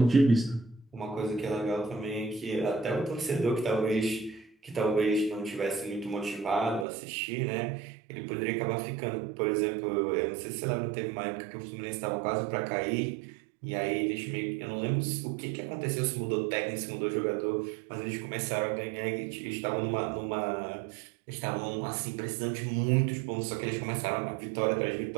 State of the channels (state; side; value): drops out; left; at 6.9 s